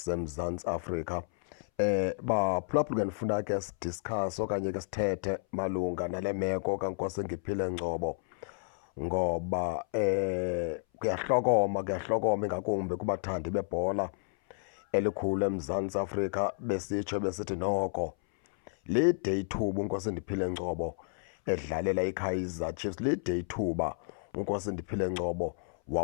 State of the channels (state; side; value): silent; right; 57 dB below the other